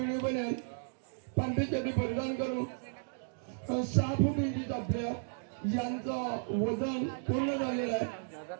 बनेल पांढरीसाठी परिधान करून 6 फूट इंचीचा आपल्या यांचं वजन पूर्ण झालेलं आहे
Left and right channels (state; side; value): silent; left; digital silence